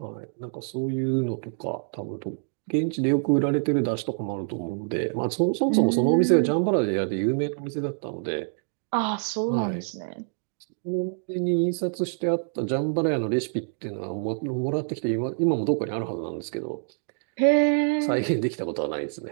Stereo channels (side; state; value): left; silent; digital silence